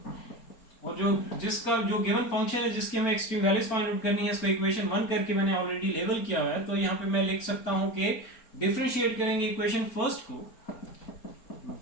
और जो जिसका जो गिवन फंक्शन है जिसकी हमें एक्सट्रीम वैल्यूज फाइंड आउट करनी है, इसको इक्वेशन 1 करके मैंने ऑलरेडी लेबल किया हुआ है। तो यहाँ पे मैं लिख सकता हूँ कि डिफरेंशिएट करेंगे इक्वेशन फर्स्ट को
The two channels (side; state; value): right; late; 4.4 ms